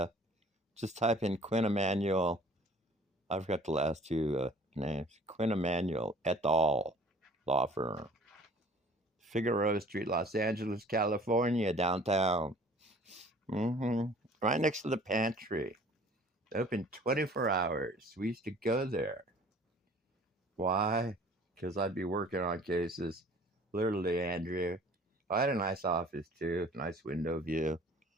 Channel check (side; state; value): both; normal; correlation 0.50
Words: in Quinn Emanuel. I forgot the last two names. Quinn Emanuel et al. Law firm. Figueroa Street, Los Angeles, California, downtown. Right next to the pantry. Open 24 hours. We used to go there. Why? Because I'd be working on cases. Literally, Andrew. I had a nice office too. Nice window view.